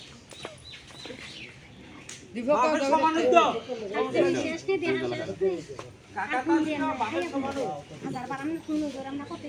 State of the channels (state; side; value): identical; both; correlation 1.00